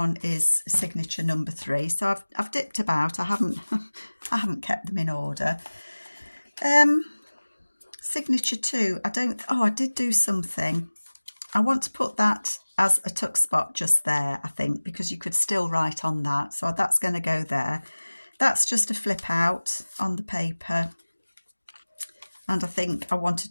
is signature number 3. So I've dipped about. I haven't kept them in order. Signature 2. I did do something. I want to put that as a tuck spot just there, I think, because you could still write on that. So that's going to go there. That's just a flip out on the paper. And I think I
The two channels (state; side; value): inverted; both; correlation -1.00